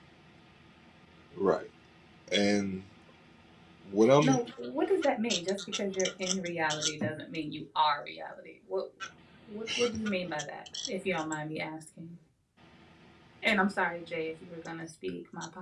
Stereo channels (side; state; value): both; identical; correlation 1.00